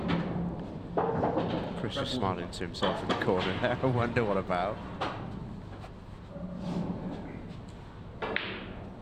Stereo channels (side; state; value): both; identical; correlation 1.00